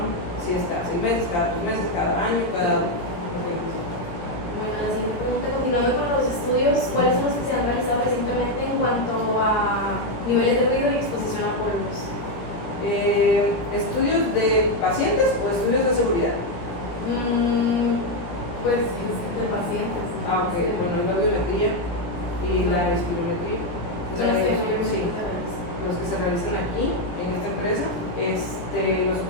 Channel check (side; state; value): right; late; 17 ms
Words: Si es cada 6 meses, cada 3 meses, cada año, cada... Bueno, Bueno, la siguiente pregunta, continuando con los estudios, ¿cuáles son los que se han realizado recientemente en cuanto a niveles de ruido y exposición a polvos? ¿Estudios de pacientes o estudios de seguridad? Pues de pacientes. Ok, bueno, la audiometría y la espirometría. Son los que Sí, mayormente se realizan. los que se realizan aquí, en esta empresa. Los